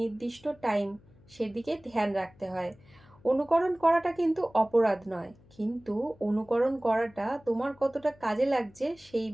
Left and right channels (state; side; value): noise; left; hum, 27 dB below the sound